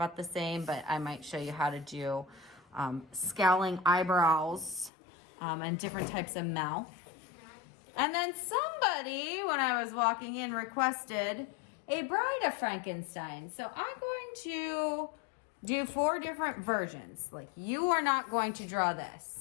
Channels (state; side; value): drops out; right; at 4.9 s